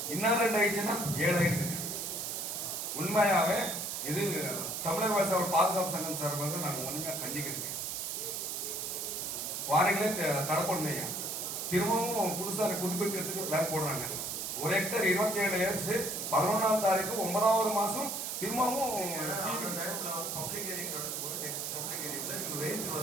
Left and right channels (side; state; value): right; noise; hiss, 3 dB below the sound